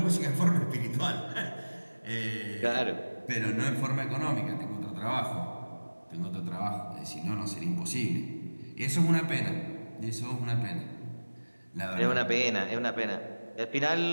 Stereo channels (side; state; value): both; inverted; correlation -1.00